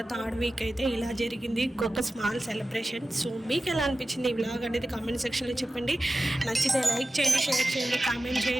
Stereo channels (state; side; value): normal; both; correlation 0.94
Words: థర్డ్ వీక్ అయితే ఇలా జరిగింది, ఒక స్మాల్ సెలబ్రేషన్. సో మీకు ఎలా అనిపించింది ఈ వ్లాగ్ అనేది కామెంట్ సెక్షన్లో చెప్పండి. నచ్చితే లైక్ చేయండి, షేర్ చేయండి, కామెంట్